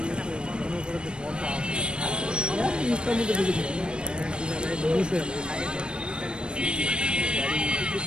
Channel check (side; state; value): left; late; 0.054 ms